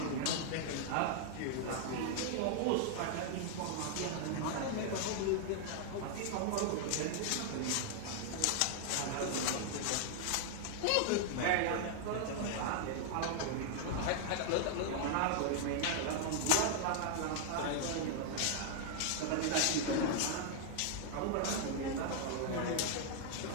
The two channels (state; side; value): different; both; correlation -0.01